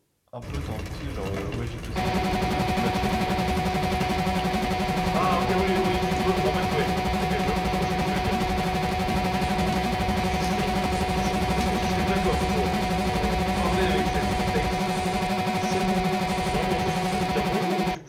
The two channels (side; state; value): both; identical; correlation 1.00